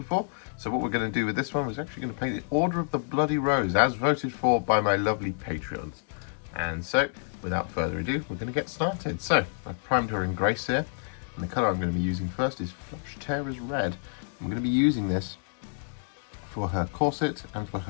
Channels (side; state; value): right; silent; digital silence